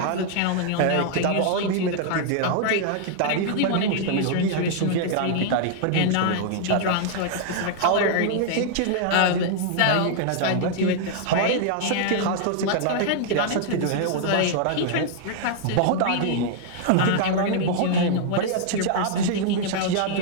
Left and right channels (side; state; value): both; different; correlation -0.01